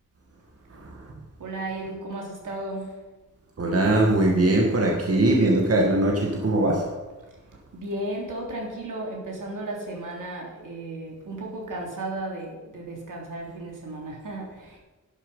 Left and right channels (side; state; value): both; normal; correlation 0.39